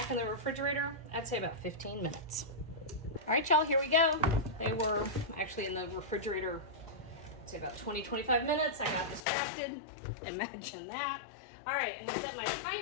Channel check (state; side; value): drops out; right; at 9.2 s